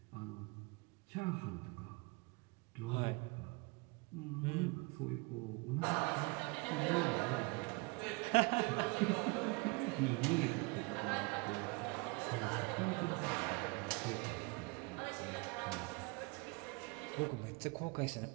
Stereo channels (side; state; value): left; quieter; 28.4 dB